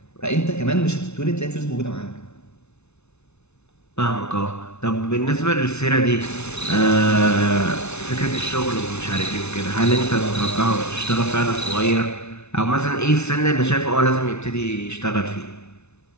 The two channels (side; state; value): right; late; 0.81 ms